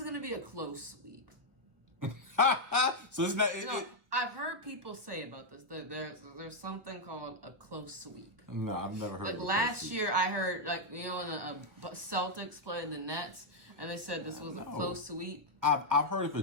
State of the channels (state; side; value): late; left; 1.2 ms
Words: going to be a close sweep. So it's not. I've heard people say about this. There's something called a close sweep. No, I've never heard. Like last year, I heard when the Celtics played the Nets, and they said this was a close sweep. I've heard of a